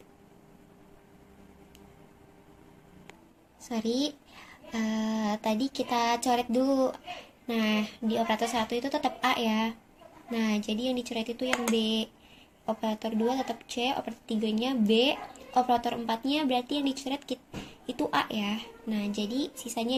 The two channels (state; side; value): identical; both; correlation 1.00